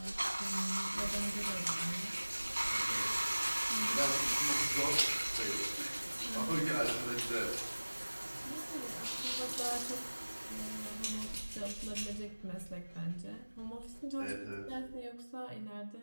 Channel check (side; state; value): both; inverted; correlation -1.00